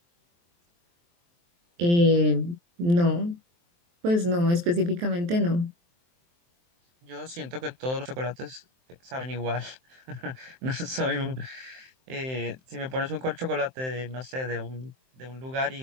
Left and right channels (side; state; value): left; late; 23 ms